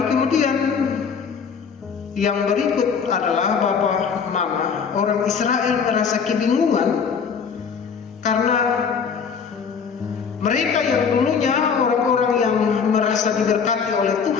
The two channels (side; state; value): right; quieter; 6.2 dB